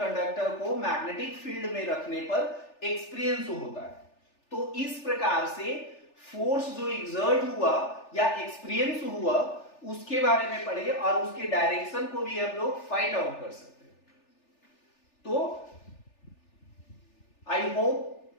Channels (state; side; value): late; right; 3.4 ms